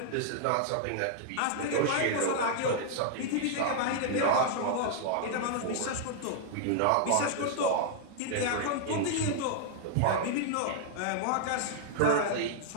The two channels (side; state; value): both; different; correlation -0.01